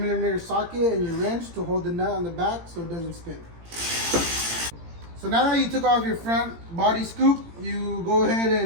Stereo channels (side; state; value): left; late; 18 ms